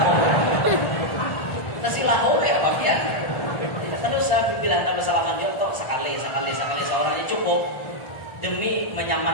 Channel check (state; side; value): late; right; 1.4 ms